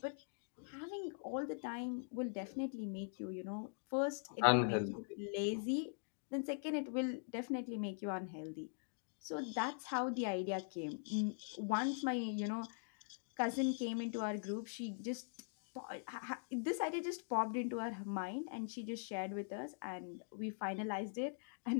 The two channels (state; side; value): silent; right; digital silence